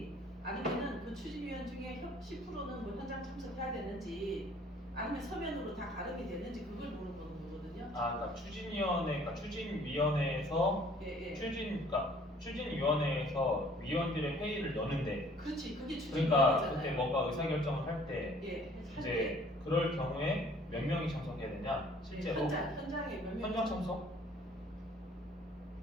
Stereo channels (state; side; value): normal; both; correlation 0.56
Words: 아니면은 그 추진위원 중에 10%는 뭐 현장 참석해야 되는지, 아니면 서면으로 다 가름이 되는지 그걸 물어보는 거거든요. 거거든요. 그러니까 추진위원회에서 예, 예. 추진위원회에서 위원들의 회의를 여는데, 그렇지, 그게 그러니까 추진위원회잖아요. 그때 뭔가 의사결정을 할 때 예, 이제 그럴 경우에 몇 명이 참석해야 되냐? 실제로 현장에 몇 명. 현장 참석?